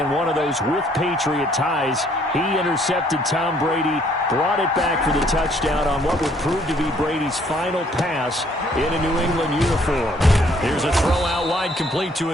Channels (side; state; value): both; normal; correlation 0.63